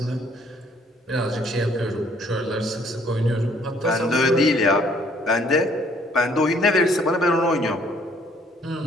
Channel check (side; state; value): both; normal; correlation 0.62